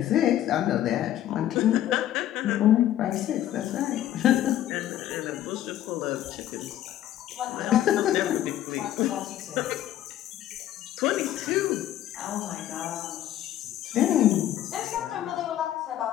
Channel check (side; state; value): right; quieter; 12.4 dB